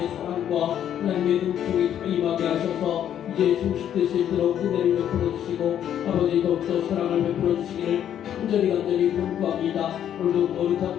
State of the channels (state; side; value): quieter; right; 10.1 dB